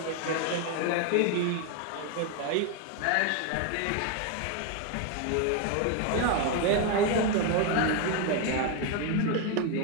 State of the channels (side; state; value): both; different; correlation 0.01